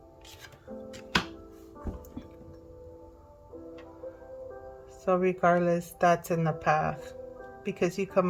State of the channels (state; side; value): identical; both; correlation 1.00